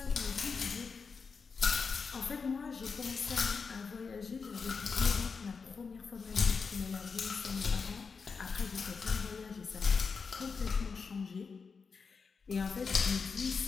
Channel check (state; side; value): quieter; right; 5.2 dB